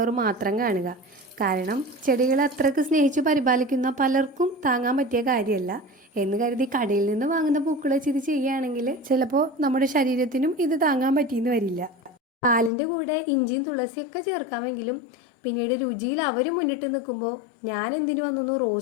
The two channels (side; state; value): right; drops out; at 12.7 s